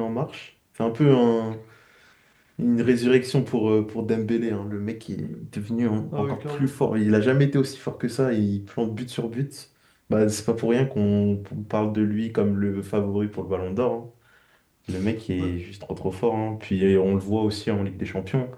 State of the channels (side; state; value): both; identical; correlation 1.00